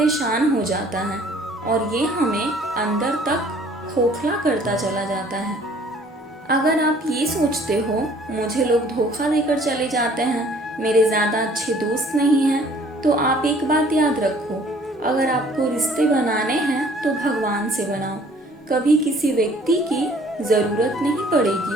हो जाता है, और ये हमें अंदर तक खोखला करता चला जाता है। अगर आप ये सोचते हो मुझे लोग धोखा देकर चले जाते हैं, मेरे ज़्यादा अच्छे दोस्त नहीं हैं, तो आप एक बात याद रखो, अगर आपको रिश्ते बनाने हैं तो भगवान से बनाओ। कभी किसी व्यक्ति की ज़रूरत नहीं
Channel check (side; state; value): both; normal; correlation 0.56